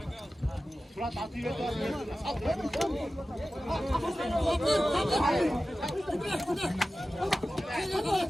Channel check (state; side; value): normal; both; correlation 0.95